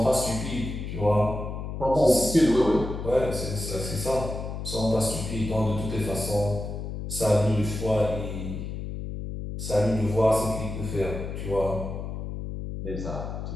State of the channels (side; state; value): left; noise; hum, 6 dB below the sound